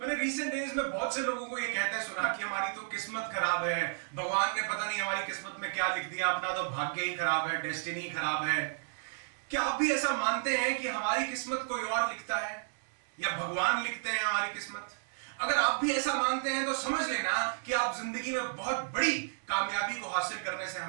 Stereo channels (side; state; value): left; silent; digital silence